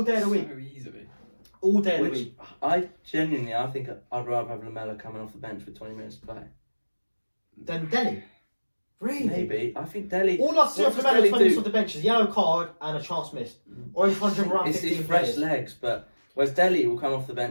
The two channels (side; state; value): both; inverted; correlation -1.00